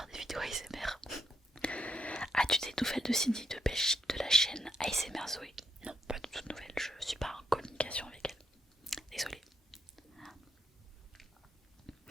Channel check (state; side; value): normal; both; correlation 0.77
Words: des vidéos ASMR. As-tu des nouvelles de Cindy de Belgique de la chaîne ASMR Zoé? Non, pas du tout de nouvelles, je suis pas en communication avec elle. Désolée.